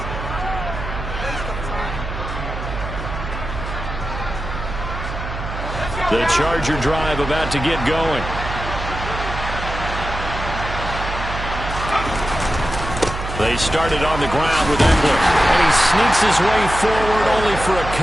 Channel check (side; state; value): right; noise; hum, 7 dB below the sound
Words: The Charger drive about to get going. They started on the ground with Engler. And he sneaks his way forward only for a